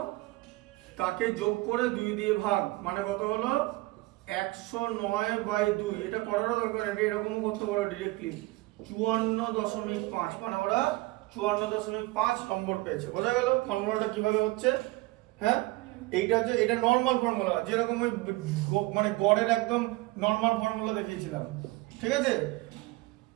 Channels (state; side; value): quieter; left; 21.3 dB